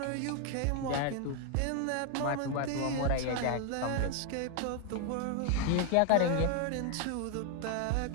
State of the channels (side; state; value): both; different; correlation 0.00